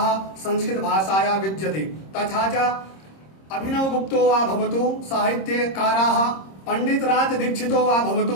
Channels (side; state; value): right; late; 26 ms